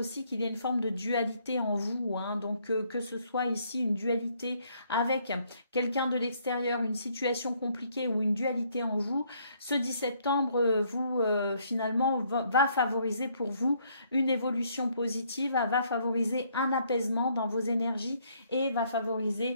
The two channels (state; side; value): inverted; both; correlation -0.68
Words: qu'il y a une forme de dualité en vous. Hein. Donc, que ce soit ici une dualité avec quelqu'un de l'extérieur, une situation compliquée ou une dualité en vous, ce 10 septembre, finalement, va favoriser pour vous une évolution positive, va favoriser un apaisement dans vos énergies et va